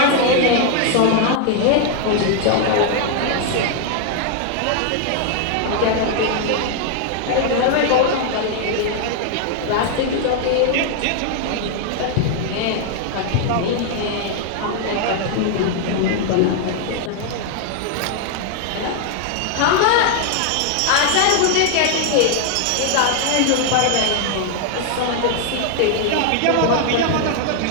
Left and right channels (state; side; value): different; both; correlation 0.00